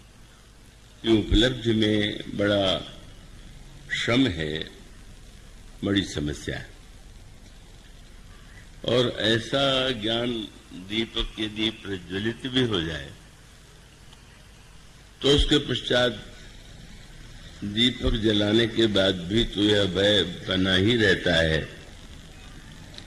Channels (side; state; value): both; identical; correlation 1.00